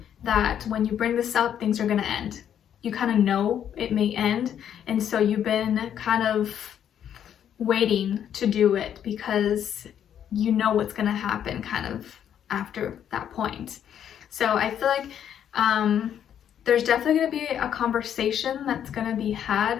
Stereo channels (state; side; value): quieter; right; 9.5 dB